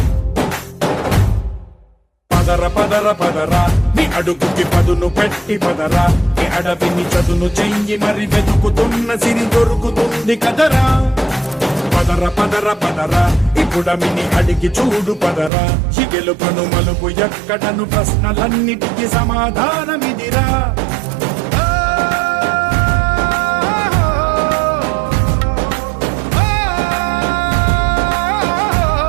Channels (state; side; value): drops out; left; at 15.5 s